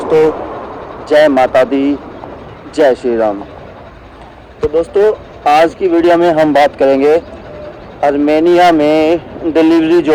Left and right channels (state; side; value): identical; both; correlation 1.00